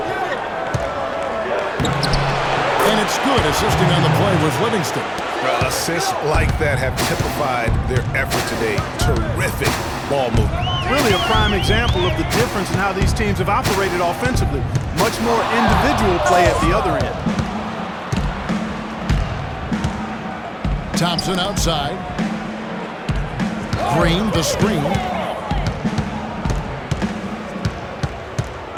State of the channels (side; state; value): both; identical; correlation 1.00